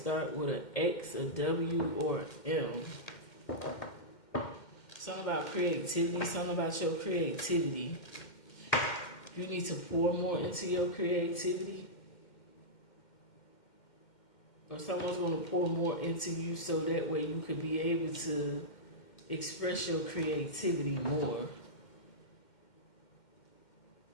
with an X, a W, or an M. Something about creativity, something about your creativity. You need to pour more into your creativity. Or someone's going to pour more into you so that way you could be able to express your creativity more.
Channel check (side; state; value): right; late; 2.1 ms